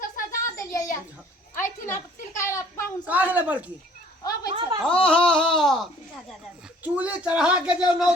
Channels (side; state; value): both; normal; correlation 0.55